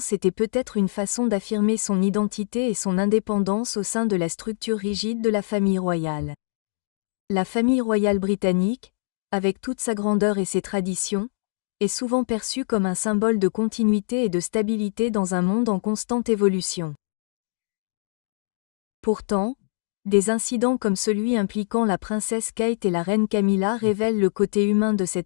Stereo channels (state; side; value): silent; right; digital silence